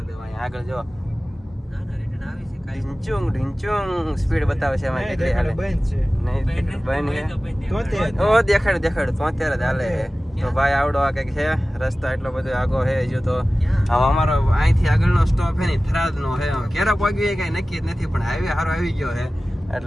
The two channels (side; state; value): both; normal; correlation 0.96